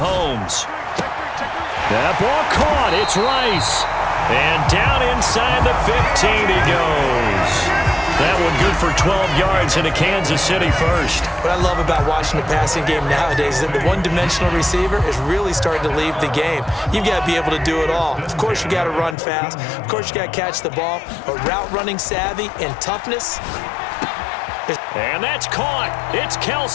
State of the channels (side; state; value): right; drops out; at 19.2 s